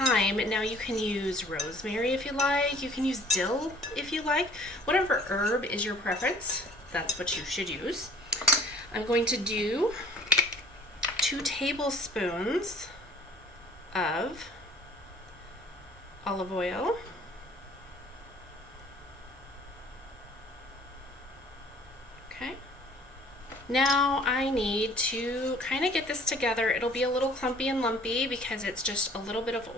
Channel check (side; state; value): both; normal; correlation 0.53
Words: Now you can use rosemary if you like, you can use dill if you like, whatever herb is your preference, that's what you should use. I'm going to do 2 tablespoons of olive oil, okay. Now I need to kind of get this together. It'll be a little clumpy and lumpy because it's just a little bit of